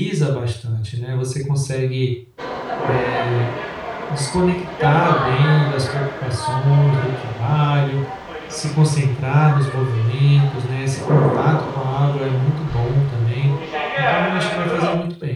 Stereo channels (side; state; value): both; identical; correlation 1.00